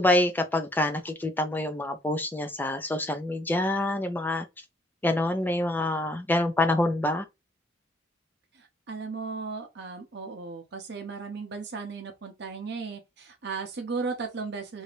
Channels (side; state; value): both; normal; correlation 0.62